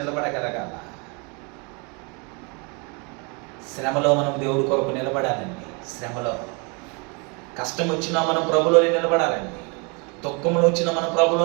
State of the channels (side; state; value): left; quieter; 32.3 dB